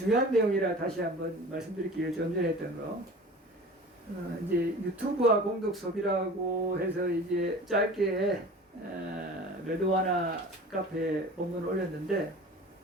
내용이라 다시 한번 말씀드릴게요. 좀 전에 했던 거. 이제 유튜브와 공덕 소비라고 해서 이제 짧게 레드와나 카페 본문을 올렸는데,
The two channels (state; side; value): normal; both; correlation 0.40